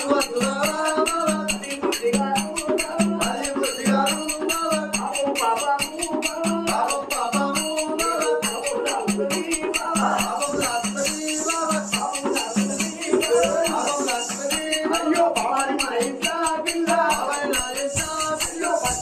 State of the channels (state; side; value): identical; both; correlation 1.00